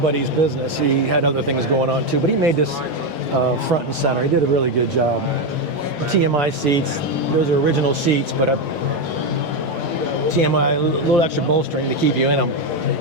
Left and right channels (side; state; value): left; late; 3.1 ms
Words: business, he had other things going on too, but he made this front and center. He did a really good job. TMI seats, those are original seats, but TMI, a little extra bolstering to keep you in them.